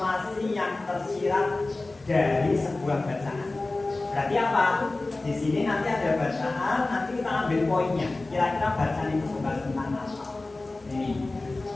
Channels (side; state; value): right; quieter; 3.1 dB